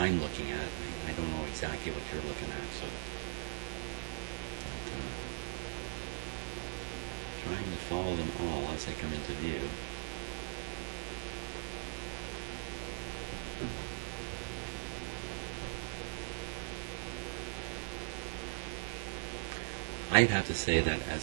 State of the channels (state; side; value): silent; left; 51 dB below the other